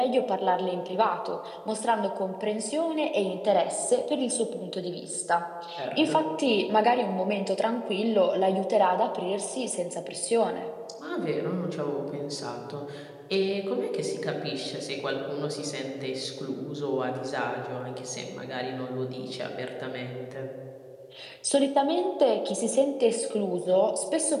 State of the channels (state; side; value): identical; both; correlation 1.00